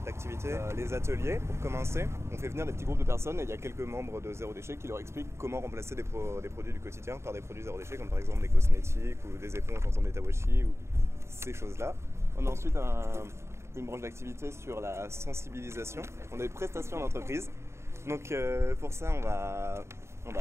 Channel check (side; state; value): left; late; 0.13 ms